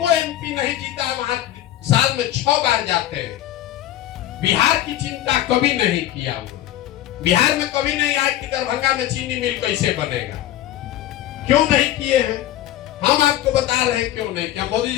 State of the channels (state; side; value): quieter; right; 13.4 dB